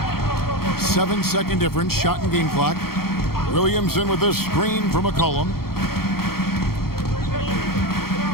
7-second difference, shot and game clock. Williamson with this screen from McCollum.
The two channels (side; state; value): right; late; 0.94 ms